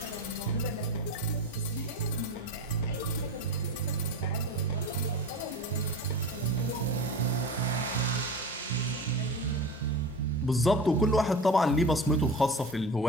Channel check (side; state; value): both; normal; correlation 0.30